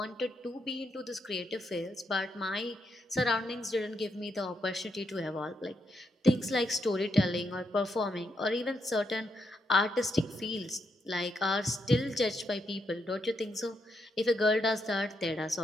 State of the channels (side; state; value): both; normal; correlation 0.80